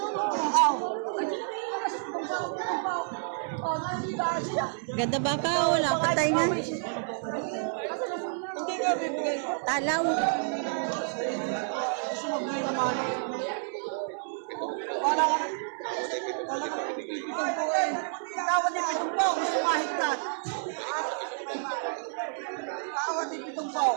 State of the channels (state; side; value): silent; left; 58 dB below the other